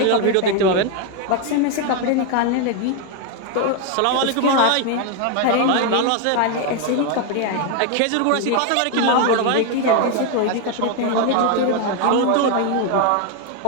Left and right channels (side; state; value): both; different; correlation 0.01